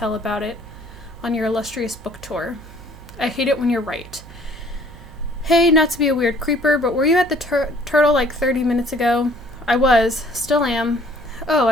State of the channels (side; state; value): right; noise; hum, 19 dB below the sound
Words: about it on your illustrious book tour. I hate it when you're right. Hey, not to be a weird creeper, but were you at the Turtle like 30 minutes ago? I was. Still am. Oh,